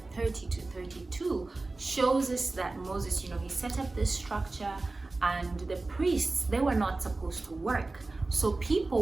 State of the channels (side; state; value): left; quieter; 3.3 dB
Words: shows us that Moses, he set up this structure, and the priests, they were not supposed to work. So